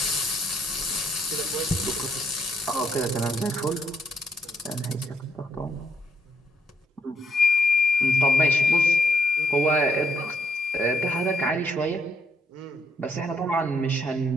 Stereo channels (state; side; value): normal; both; correlation 0.74